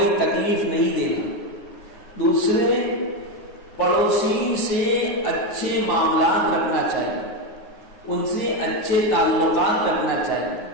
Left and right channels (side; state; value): right; late; 9.6 ms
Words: تکلیف نہیں دینا۔ دوسرے، پڑوسی سے اچھے معاملات رکھنا چاہیے، ان سے اچھے تعلقات رکھنا چاہیے،